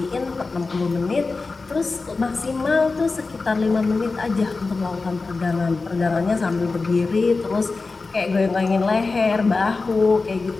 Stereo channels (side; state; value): right; quieter; 3.9 dB